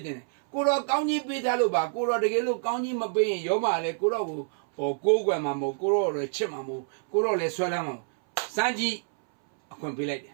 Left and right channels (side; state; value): left; silent; 60 dB below the other